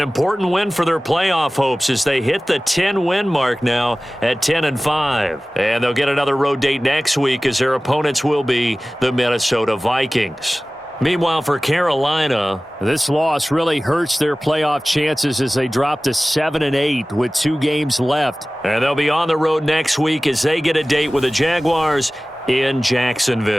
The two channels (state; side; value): normal; both; correlation 0.98